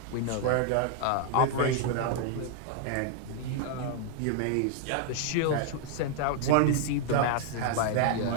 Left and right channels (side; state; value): both; different; correlation 0.00